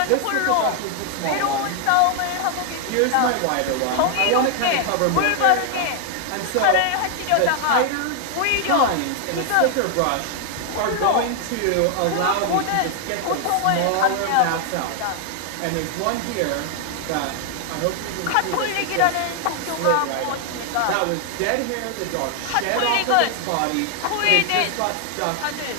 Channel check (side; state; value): both; different; correlation 0.00